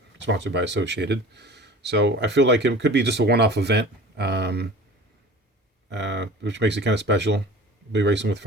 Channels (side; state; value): both; normal; correlation 0.41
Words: sponsored by Associated. So I feel like it could be just a one-off event, which makes it kind of special. I'll be racing with